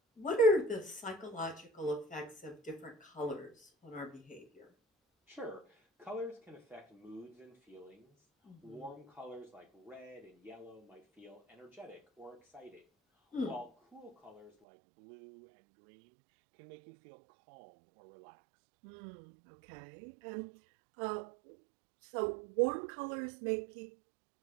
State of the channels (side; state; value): left; drops out; at 14.5 s